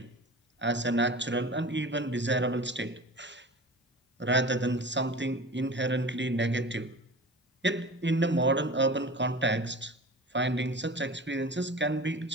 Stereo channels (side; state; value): both; normal; correlation 0.36